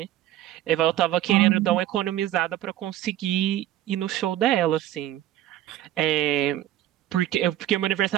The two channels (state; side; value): quieter; left; 13.0 dB